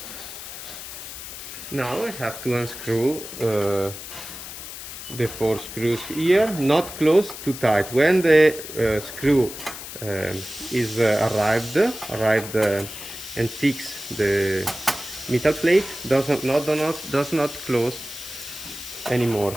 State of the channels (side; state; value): left; noise; hiss, 11 dB below the sound